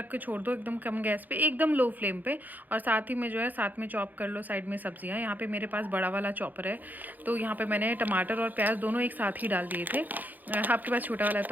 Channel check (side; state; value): left; late; 0.084 ms